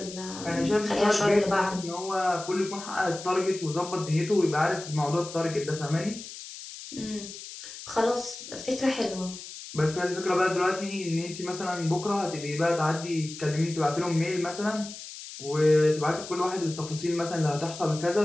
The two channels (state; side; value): noise; left; hiss, 12 dB below the sound